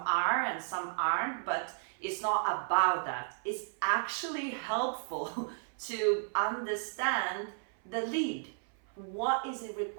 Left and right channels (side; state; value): left; silent; 55 dB below the other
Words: and some aren't, but it's not about that. It's actually helpful to understand the lead. What is it